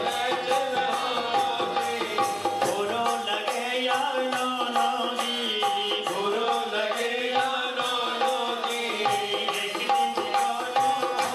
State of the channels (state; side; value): identical; both; correlation 1.00